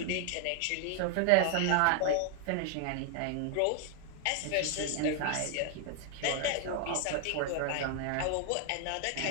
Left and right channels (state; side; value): different; both; correlation 0.00